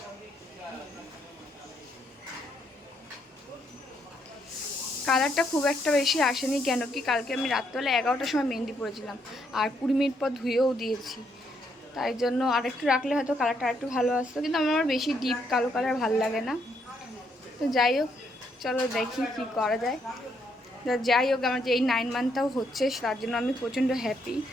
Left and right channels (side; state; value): both; normal; correlation 0.74